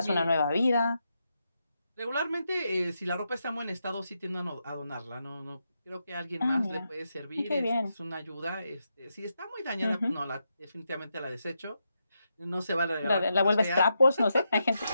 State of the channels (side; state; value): both; inverted; correlation -0.84